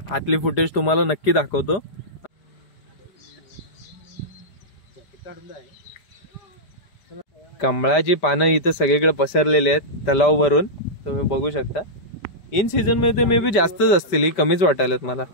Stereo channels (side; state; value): right; late; 5.0 ms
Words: आतली फुटेज तुम्हाला नक्की दाखवतो. कमळाची पानं इथं सगळीकडे पसरलेली आहेत तलाव भरून, तुम्ही बघू शकता. इन सीझन मध्ये मे बी जास्तच असतील, कमीच वाटायलेत मला.